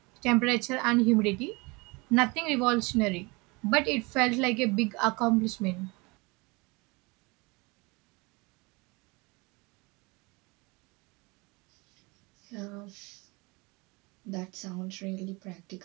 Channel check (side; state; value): left; quieter; 26.3 dB